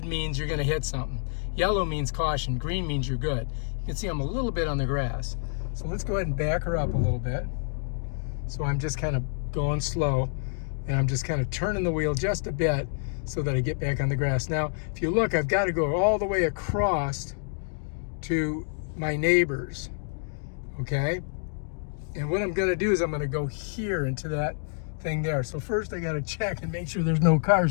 means you're going to hit something. Yellow means caution. Green means you're good. You can see I'm a little bit on the grass. So let's go ahead and back her up a little bit. So I'm just kind of going slow, and I'm just kind of turning the wheel just a bit so that I get back on the grass. Now, if you look, I've got to go all the way across to my neighbors, okay? And what I'm going to do is I'm going to go here into that thing there. So first I got to check and make sure there's no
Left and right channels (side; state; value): right; silent; digital silence